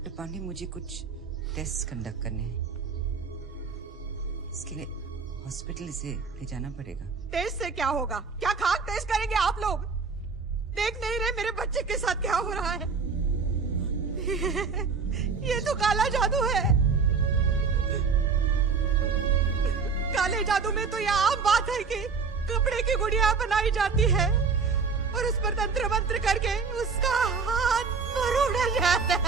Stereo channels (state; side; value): quieter; left; 5.1 dB